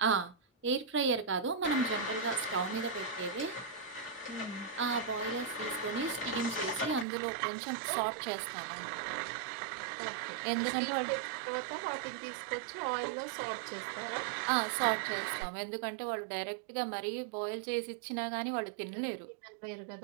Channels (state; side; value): drops out; left; at 7.1 s